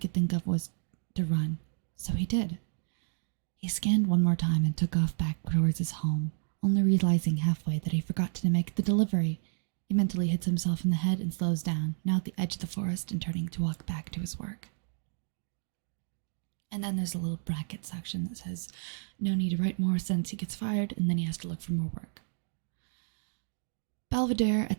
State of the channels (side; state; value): left; silent; digital silence